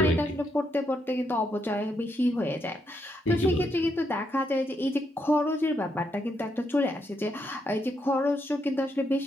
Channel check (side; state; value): both; normal; correlation 0.78